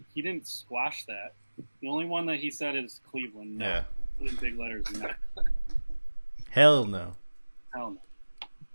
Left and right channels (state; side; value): inverted; both; correlation -1.00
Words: He didn't squash that. The only one that he said is Cleveland. No. Yeah. Put in big letters. No. Hell no. Hell no.